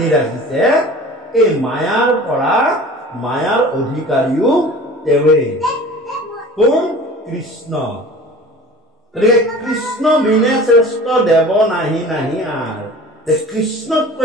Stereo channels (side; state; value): both; normal; correlation 0.42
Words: ৰাখিছে এই মায়াৰ পৰা মায়াৰ অধিকাৰীও তেওঁৱে কোন কৃষ্ণ গতিকে কৃষ্ণ বিনে শ্ৰেষ্ঠ দেৱ নাহি নাহি আৰ